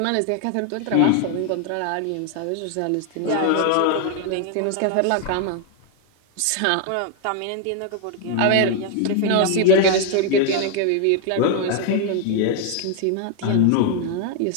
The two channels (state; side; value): different; both; correlation 0.00